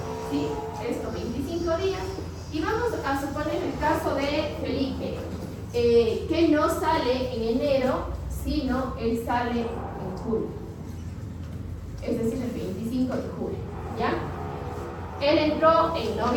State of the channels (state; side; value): identical; both; correlation 1.00